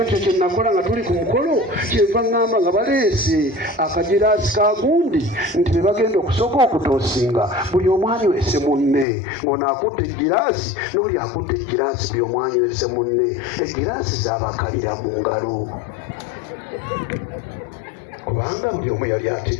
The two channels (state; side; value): drops out; right; at 9.1 s